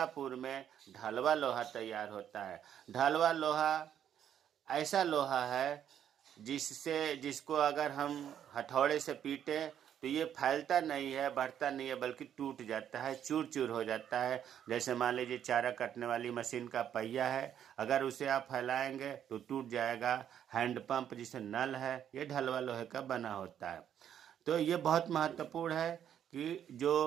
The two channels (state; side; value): quieter; left; 9.6 dB